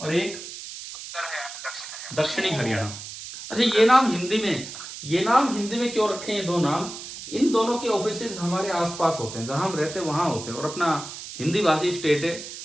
एक दक्षिणी हरियाणा। अच्छा ये नाम हिंदी में क्यों रखे हैं ये 2 नाम? इन दोनों के ऑफिसेज हमारे आसपास होते हैं, जहां हम रहते हैं वहां होते हैं। और अपना हिंदी भाषी स्टेट है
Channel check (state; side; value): noise; right; hiss, 11 dB below the sound